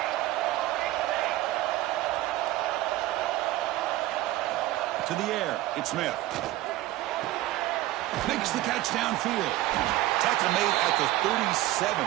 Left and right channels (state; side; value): quieter; left; 16.3 dB